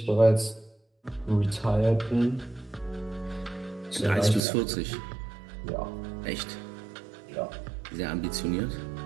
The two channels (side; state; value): left; drops out; at 4.4 s